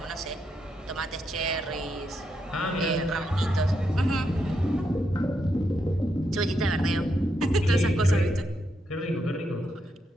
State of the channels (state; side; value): normal; both; correlation 0.81